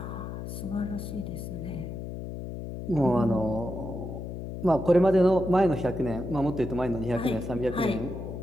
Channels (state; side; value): noise; left; hum, 7 dB below the sound